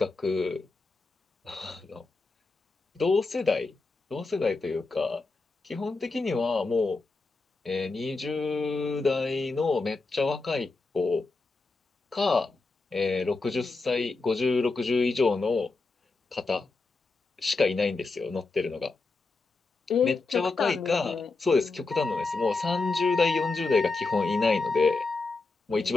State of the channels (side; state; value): right; quieter; 3.7 dB